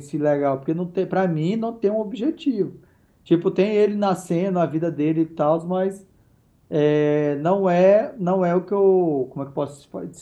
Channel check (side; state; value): both; identical; correlation 1.00